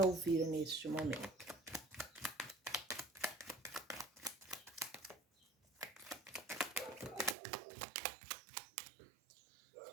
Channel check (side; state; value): left; drops out; at 7.4 s